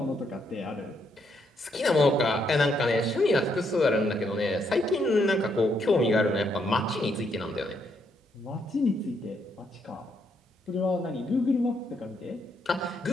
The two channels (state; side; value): normal; both; correlation 0.75